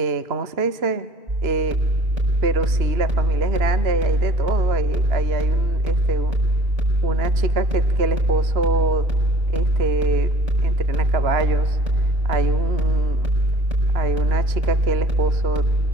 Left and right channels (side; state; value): left; late; 2.9 ms